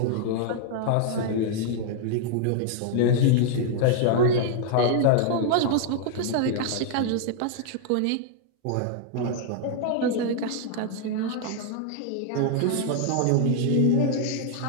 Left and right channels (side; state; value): both; different; correlation -0.01